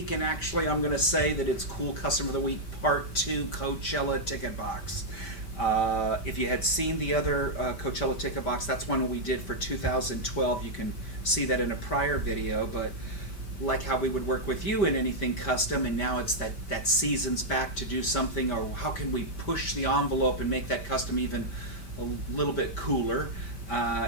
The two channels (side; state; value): right; late; 5.1 ms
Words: and actually I'm going to say that it's Cool Custom for the Week Part 2 Coachella Ticket Box. If you had seen the other Coachella Ticket Box, that's one we did for 2012. You can see that in a prior video, but like how we would work with you in anything custom, and now it's that season's back to do something, or how can we push the envelope and make that custom even a little bit cooler.